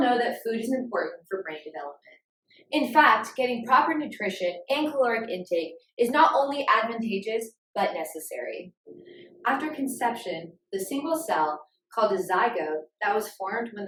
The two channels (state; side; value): identical; both; correlation 1.00